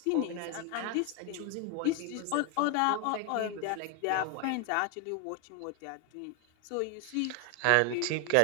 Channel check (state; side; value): different; both; correlation 0.01